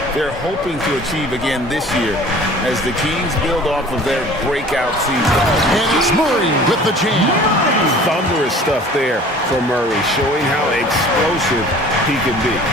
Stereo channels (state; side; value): normal; both; correlation 0.47